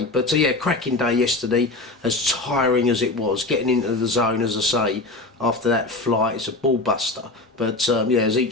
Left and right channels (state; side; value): quieter; right; 3.0 dB